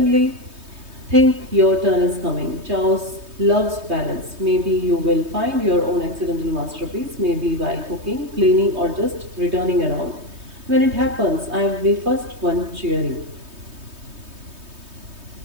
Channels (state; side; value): late; left; 3.2 ms